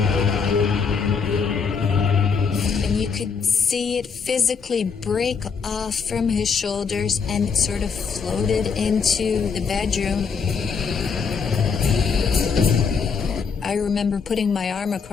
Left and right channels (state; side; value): quieter; right; 5.8 dB